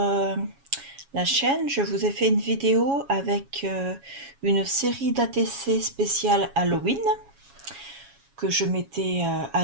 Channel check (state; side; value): late; left; 7.2 ms